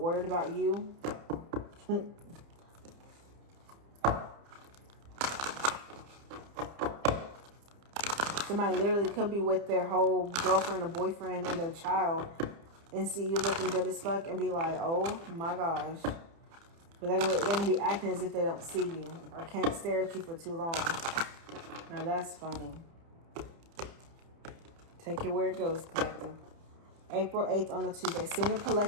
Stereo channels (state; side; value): late; left; 30 ms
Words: about you. Somebody literally could be with their whole girlfriend or boyfriend and their child and see you looking good as fuck and be like, oh my gosh. But they're gonna be acting as if they don't see you or can't stare at you for too long. Now that's funny. Take it where it goes, collective. April 8th on a Tuesday. Sing the